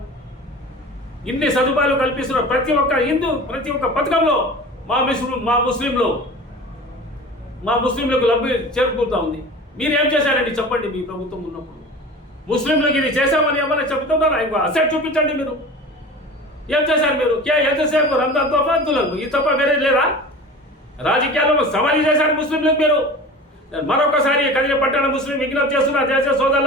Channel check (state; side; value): normal; both; correlation 0.37